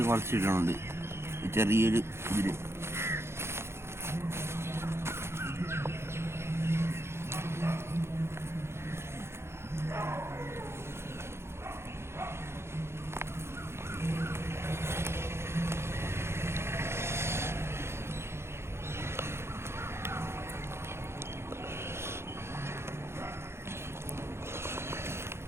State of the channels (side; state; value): left; late; 0.12 ms